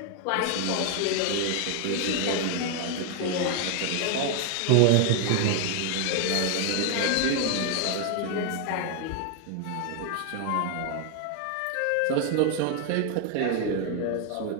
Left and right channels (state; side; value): different; both; correlation 0.00